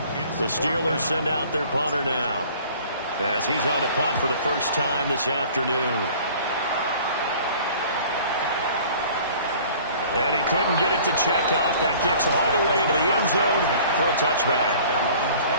The Steelers send out their punter now, as he's on to punt for the first time this afternoon. And he couldn't get it to check up. That kicks all the way into the end zone for a touchback.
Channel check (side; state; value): both; inverted; correlation -0.49